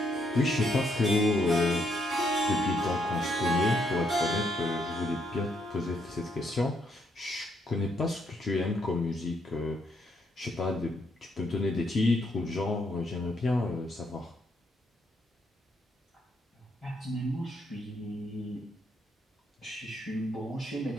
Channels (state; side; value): normal; both; correlation 0.74